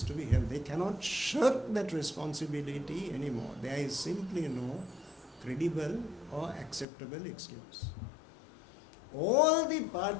to be held. They cannot shirk that responsibility anymore. There is simply no credible or acceptable excuse. All the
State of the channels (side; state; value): right; drops out; at 6.9 s